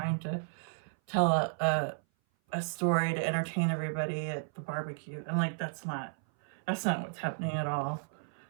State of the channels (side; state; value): left; silent; 56 dB below the other